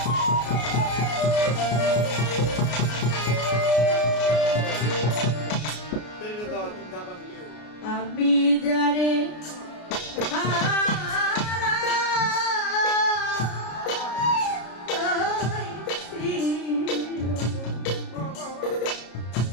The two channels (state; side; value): late; right; 33 ms